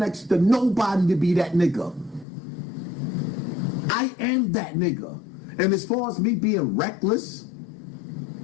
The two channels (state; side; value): drops out; right; at 2.2 s